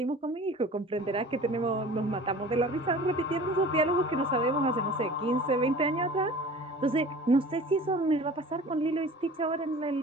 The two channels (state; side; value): normal; both; correlation 0.42